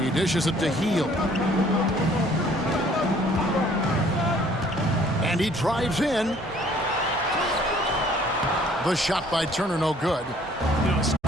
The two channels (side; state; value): both; normal; correlation 0.58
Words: He dishes it to Heel. And he drives in. The shot by Turner no good. You know,